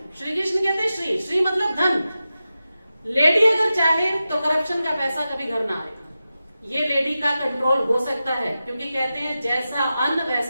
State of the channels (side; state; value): both; inverted; correlation -0.93